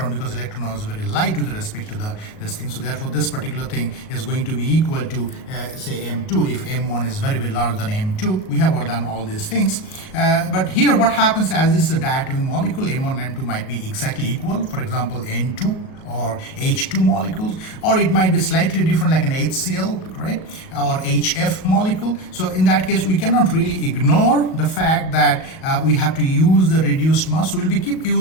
because electron was very light with respect to this thing. So therefore this particular thing is going to be equal to say M2 if M1 is very, very larger than M2. We have all done all these things, but here what happens, as this is a diatomic molecule, M1 and M2 might be exactly equal. For example, N2 or H2 molecules, or it might be slightly different like an HCl, right, or HF molecule. So in that case we cannot really ignore the fact that we have to use the reduced mass. We'll be keep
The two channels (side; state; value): right; late; 38 ms